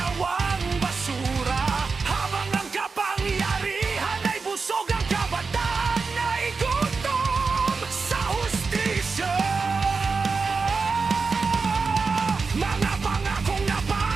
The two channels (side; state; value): left; quieter; 4.6 dB